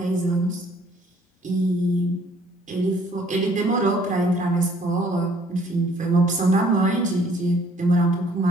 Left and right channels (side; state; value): both; normal; correlation 0.60